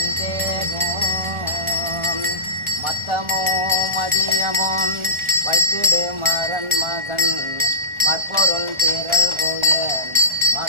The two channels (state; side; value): late; left; 1.4 ms